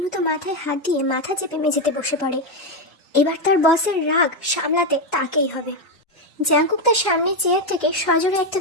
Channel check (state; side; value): normal; both; correlation 0.07